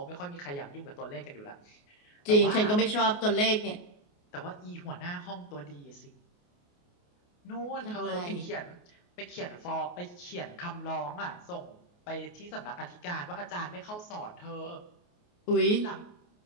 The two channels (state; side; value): late; right; 28 ms